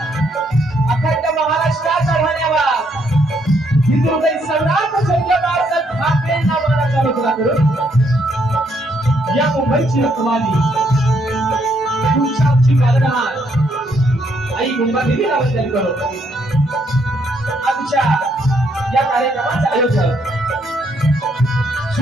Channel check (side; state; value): both; normal; correlation 0.72